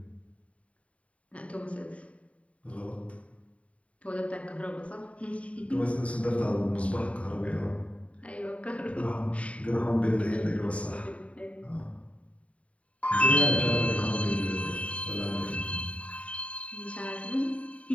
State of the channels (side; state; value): right; late; 0.065 ms